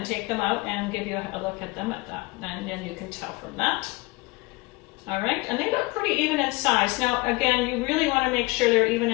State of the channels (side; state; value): right; quieter; 23.5 dB